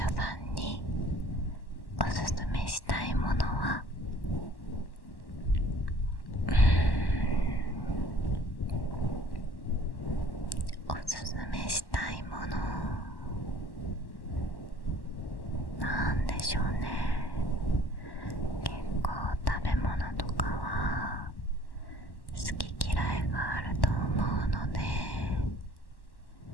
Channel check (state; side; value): late; right; 1.1 ms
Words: さんにおすすめしたいものは、おすすめしたいものなんでしょうね。結構食べ物とかは好き嫌いがあると思うので、